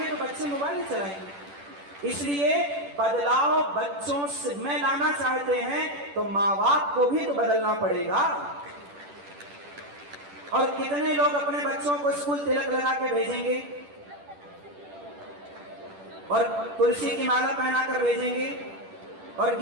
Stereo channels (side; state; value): left; late; 10 ms